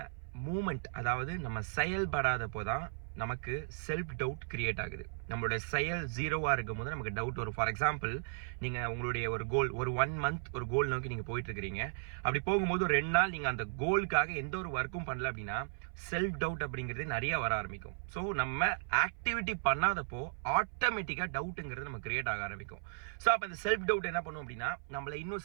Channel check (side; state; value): left; silent; 54 dB below the other